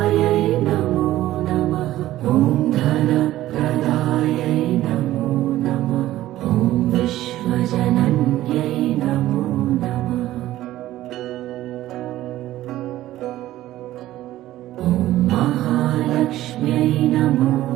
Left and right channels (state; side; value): quieter; left; 14.8 dB